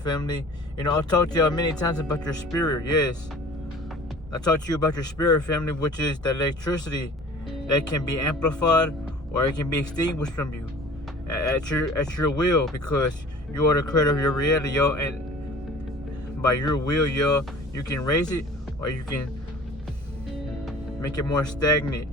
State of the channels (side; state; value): both; normal; correlation 0.46